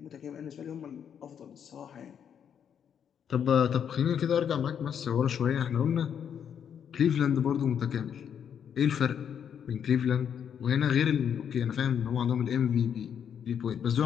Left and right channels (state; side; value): quieter; right; 8.3 dB